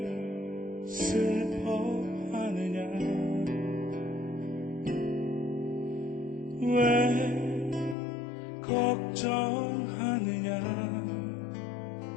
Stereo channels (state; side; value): drops out; right; at 8.0 s